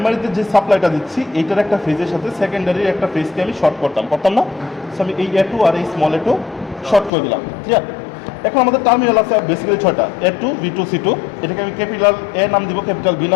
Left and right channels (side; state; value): right; drops out; at 7.1 s